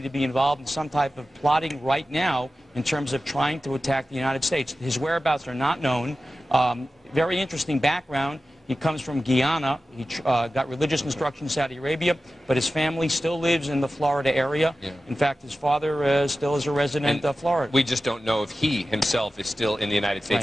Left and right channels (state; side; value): normal; both; correlation 0.94